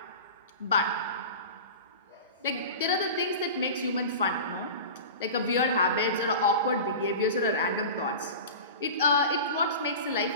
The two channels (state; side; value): inverted; both; correlation -0.32